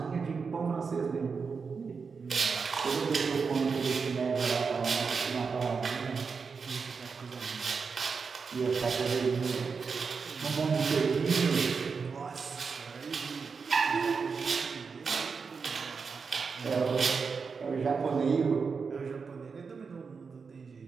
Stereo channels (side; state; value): left; quieter; 5.3 dB